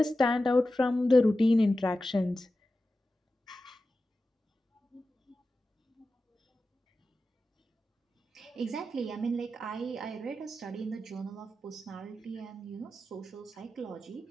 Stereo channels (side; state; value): both; normal; correlation 0.93